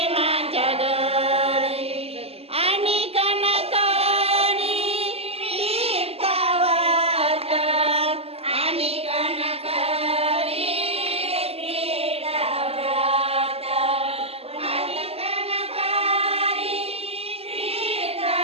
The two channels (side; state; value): left; late; 0.29 ms